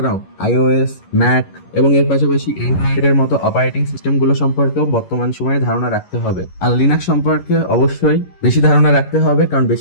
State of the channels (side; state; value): right; late; 11 ms